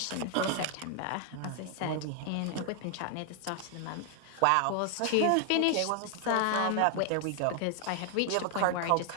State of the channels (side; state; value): both; different; correlation 0.00